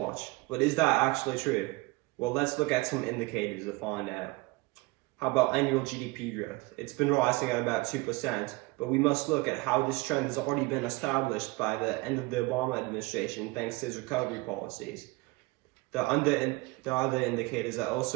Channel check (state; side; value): quieter; left; 23.8 dB